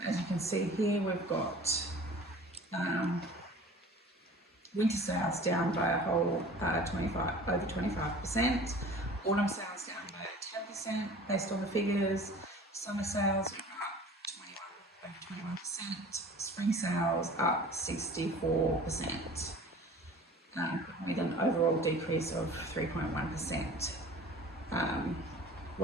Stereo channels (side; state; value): both; normal; correlation 0.44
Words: As you can see here, we've got winter sales down by a whole over 25%, autumn sales down by 10% based on the figures, summer sales are up over 21%, spring sales up 64%, with an overall decrease of 3.1%.